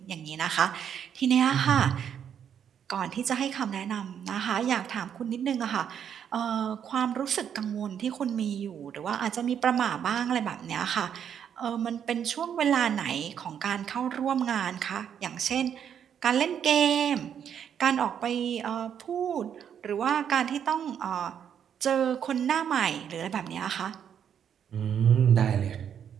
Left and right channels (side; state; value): left; quieter; 8.5 dB